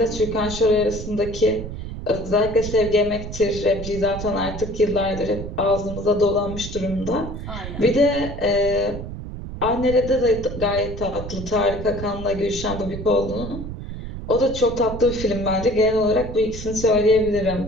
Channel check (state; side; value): noise; right; rumble, 9 dB below the sound